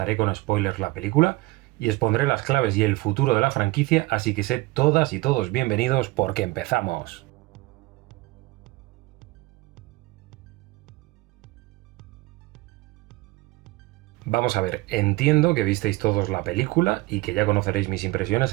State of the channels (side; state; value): left; quieter; 21.0 dB